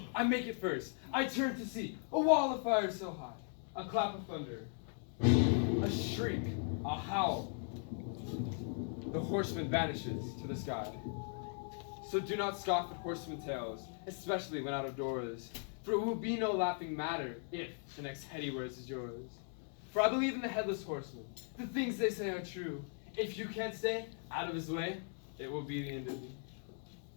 I make it first. I turn to see a wall of fire so high, a clap of thunder, a shriek, a howl. The horseman vanishes to the sky. So do not scoff at horseman tales, especially when out of doors. For it will be no laughing matter if the next head he wears is yours. For I believe in the Headless Horseman. The things they say are true. If you can't stay out of his way, it will be the end of you.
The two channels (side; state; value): right; silent; 52 dB below the other